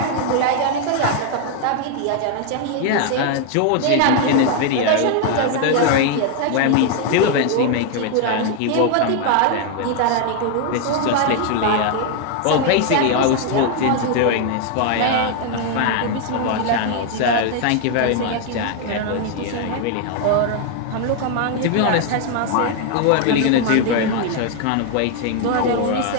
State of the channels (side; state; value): both; different; correlation 0.00